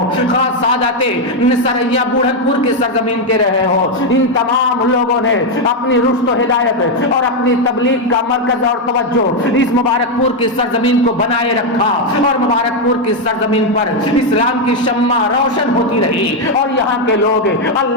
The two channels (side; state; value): both; normal; correlation 0.03